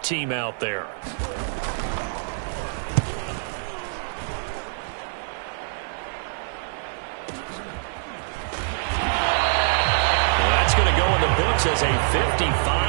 team out there. As a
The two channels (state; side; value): silent; left; 56 dB below the other